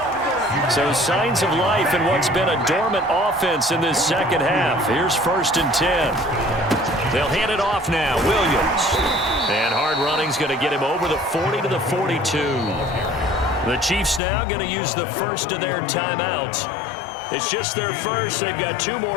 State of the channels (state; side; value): drops out; right; at 14.2 s